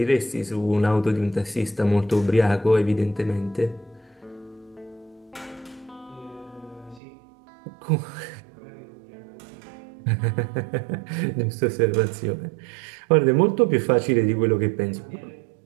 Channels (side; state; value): left; drops out; at 7.0 s